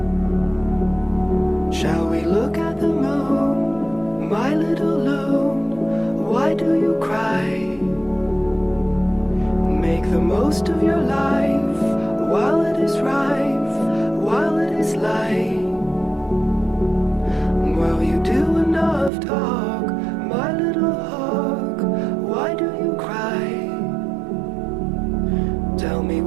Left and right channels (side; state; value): left; drops out; at 19.1 s